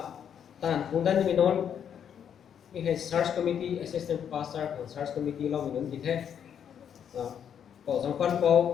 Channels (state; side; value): quieter; right; 8.5 dB